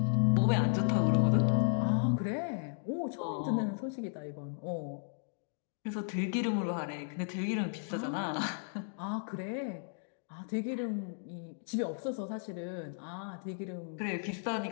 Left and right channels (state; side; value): silent; right; digital silence